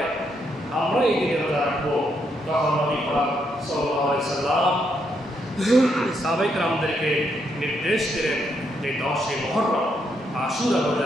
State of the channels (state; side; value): normal; both; correlation 0.77